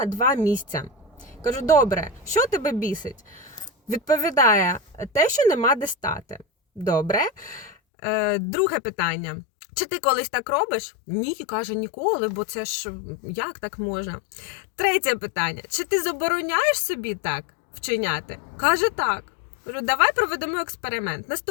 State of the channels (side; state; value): right; drops out; at 7.7 s